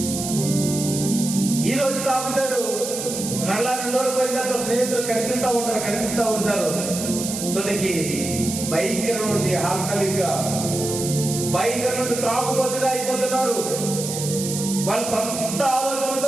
ఈ రోజు తాగుతాడు, మళ్ళా 2 రోజులు పోయిన తర్వాత స్నేహితులు కనిపిస్తా ఉంటారు. తొలికి భయంకరం నుండి ఆల్కహాలిక్గా, భయంకరం నుండి త్రాగుబోతుగా అయిపోతున్నారు. వాళ్ళ సొంత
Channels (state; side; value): noise; right; hiss, 5 dB below the sound